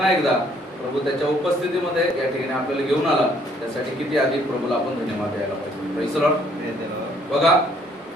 एकदा प्रभू त्याच्या उपस्थितीमध्ये या ठिकाणी आपल्याला घेऊन आला. त्यासाठी किती अधिक प्रभूला आपण धन्यवाद द्यायला पाहिजे. Praise Lord. बघा,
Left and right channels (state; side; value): normal; both; correlation 0.64